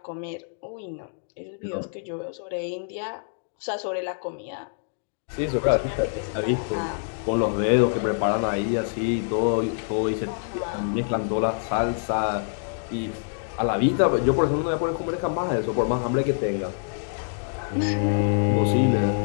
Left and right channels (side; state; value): right; silent; digital silence